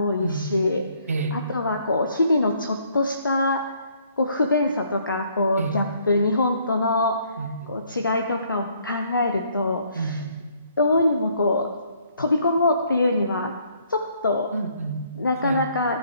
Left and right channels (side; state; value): both; inverted; correlation -0.65